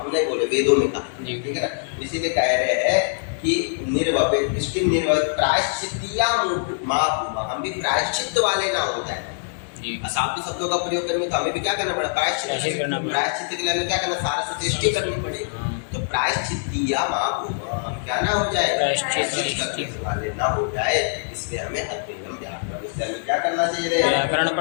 बोले वेदों में कहा, जी। ठीक है ना। इसीलिए कह रहे हैं कि निर्वपित इष्टि निर्वपित प्रायश्चित्तिया महाभूमा, हम भी प्रायश्चित वाले ना हो जाए। जी। असाधु शब्दों का प्रयोग करने में तो हमें भी क्या करना पड़ा? प्रायश्चित करना पड़ा। प्रायश्चित के लिए हमें क्या करना? सारस्वती इष्टि करनी पड़ेगी। हाँ। तो प्रायश्चित्तिया महाभूमा, हम क्या ना हो जाए? प्रायश्चित करने वाले ना हो जाए, इसलिए हमें अध्ययन व्याकरण, इसलिए हमें क्या करना चाहिए रे? व्याकरण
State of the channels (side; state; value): right; silent; digital silence